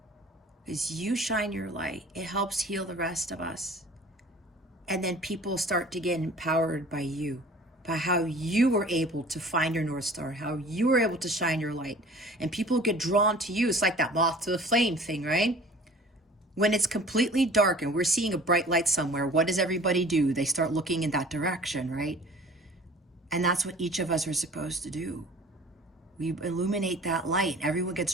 As you shine your light, it helps heal the rest of us. And then people start to get empowered by you, by how you were able to find your North Star, how you were able to shine your light. And people get drawn to you. It's like that moth to the flame thing, right? When it's completely dark and we're seeing a bright light somewhere, what does everybody do? They start looking in that direction, right? And that's what each of us are supposed to do. We illuminate that light. Everyone gets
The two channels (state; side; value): normal; both; correlation 0.46